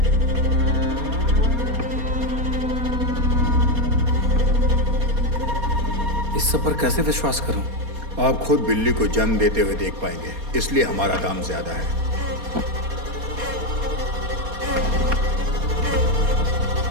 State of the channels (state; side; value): late; left; 4.2 ms